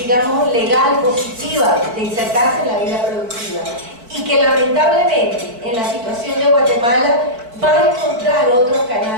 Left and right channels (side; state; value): left; late; 4.5 ms